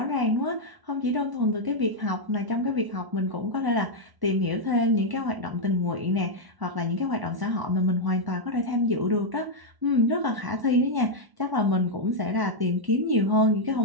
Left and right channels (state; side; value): late; left; 1.1 ms